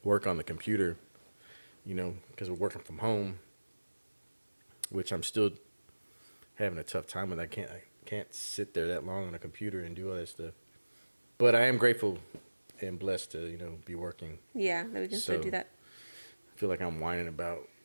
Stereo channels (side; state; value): both; inverted; correlation -1.00